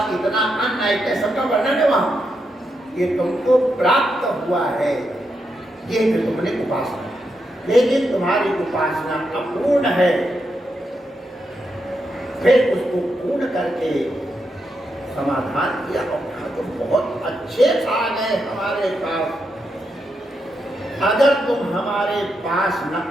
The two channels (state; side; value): normal; both; correlation 0.83